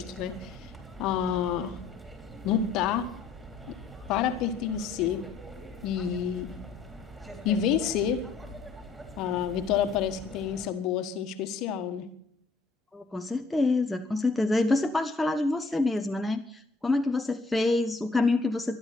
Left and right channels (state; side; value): quieter; right; 4.4 dB